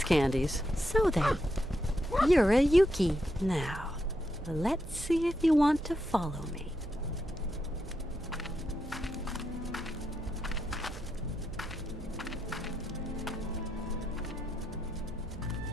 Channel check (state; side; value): noise; right; hum, 14 dB below the sound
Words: candies. So then, you're a Yuki. Now, let's see if you want to follow me.